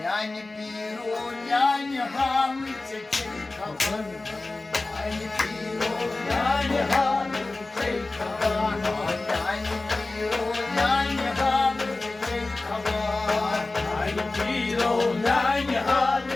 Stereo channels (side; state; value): right; quieter; 3.2 dB